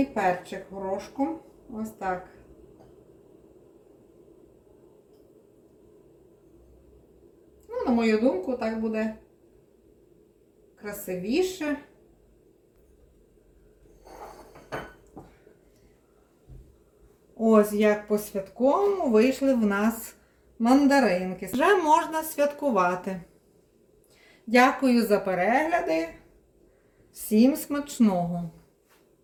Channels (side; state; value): both; identical; correlation 1.00